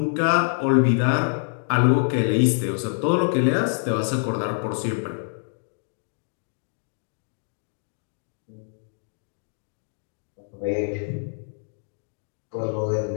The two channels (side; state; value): right; silent; digital silence